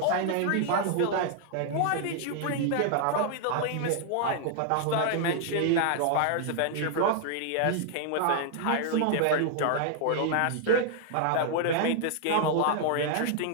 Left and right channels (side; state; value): both; different; correlation -0.01